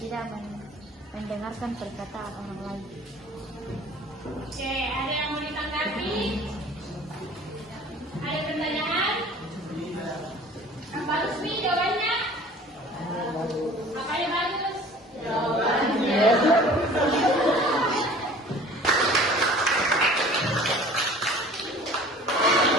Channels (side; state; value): both; normal; correlation 0.47